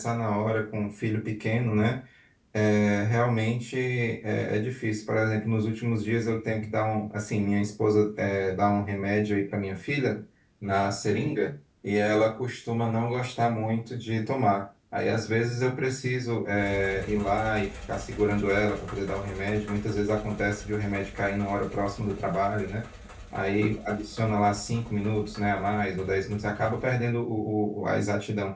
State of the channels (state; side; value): identical; both; correlation 1.00